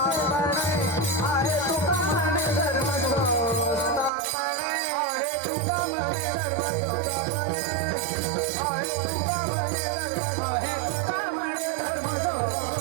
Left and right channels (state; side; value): drops out; left; at 4.1 s